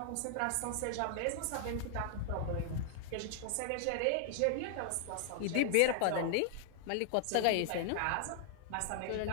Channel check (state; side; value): different; both; correlation -0.01